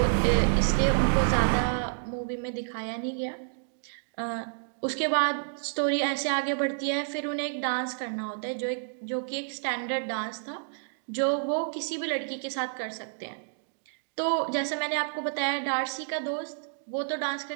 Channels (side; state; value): left; silent; digital silence